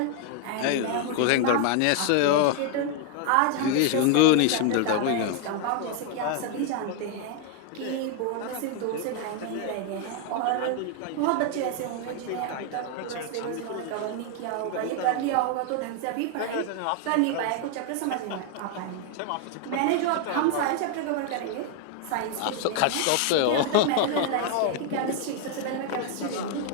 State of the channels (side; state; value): both; different; correlation 0.00